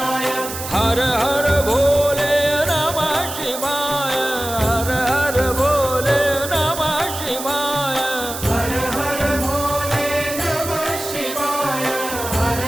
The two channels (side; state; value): right; noise; hiss, 8 dB below the sound